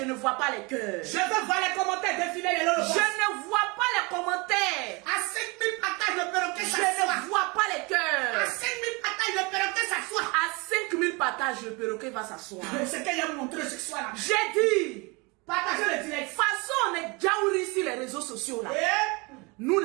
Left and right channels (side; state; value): left; quieter; 27.7 dB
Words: ne vois pas les cœurs. Je veux voir les commentaires défiler les Je lolobosses. ne vois pas les commentaires. À 5000 partages, le perroquet Je s'assoit. ne vois pas les À cœurs. 5000 partages, le perroquet s'assoit. À 5000 partages, le perroquet va s'asseoir. C'est que j'ai montré ce soir-là. J'ai dit, Partagez le de direct. toute façon, on est jaouri sur les réseaux sociaux là. Et Nous,